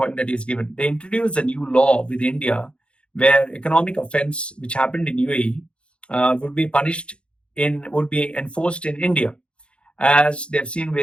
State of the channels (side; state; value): right; late; 0.058 ms